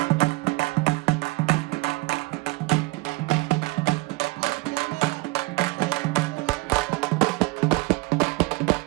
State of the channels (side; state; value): left; quieter; 23.8 dB